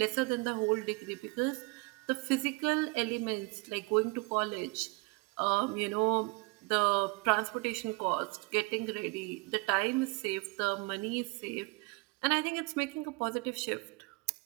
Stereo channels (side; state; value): left; quieter; 27.0 dB